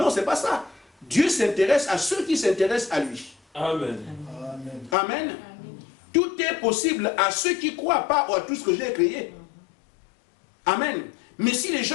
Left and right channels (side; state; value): right; drops out; at 5.0 s